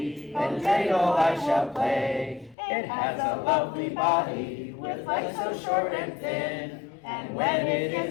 then dreidel I shall play. It has a lovely body, with legs so short and thin. And when it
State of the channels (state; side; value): drops out; right; at 2.6 s